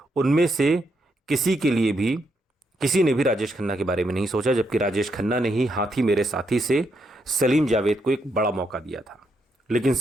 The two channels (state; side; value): normal; both; correlation 0.79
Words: उनमें से किसी ने भी राजेश खन्ना के बारे में नहीं सोचा, जबकि राजेश खन्ना ने ही हाथी मेरे साथी से सलीम जावेद को एक बड़ा मौका दिया था। लेकिन